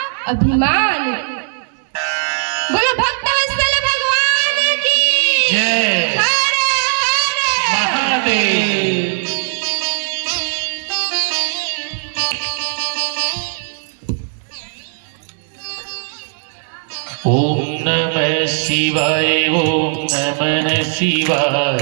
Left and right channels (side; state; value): left; silent; 61 dB below the other